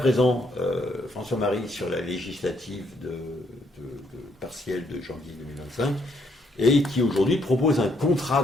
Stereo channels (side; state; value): both; normal; correlation 0.72